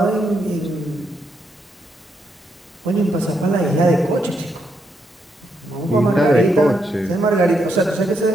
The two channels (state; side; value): normal; both; correlation 0.79